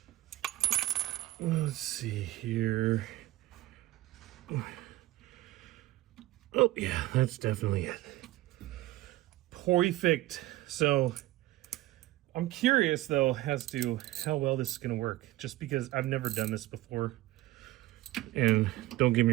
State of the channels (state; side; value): quieter; left; 16.7 dB